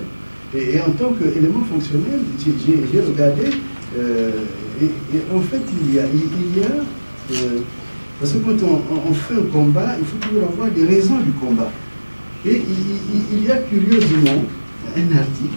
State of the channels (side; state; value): both; inverted; correlation -1.00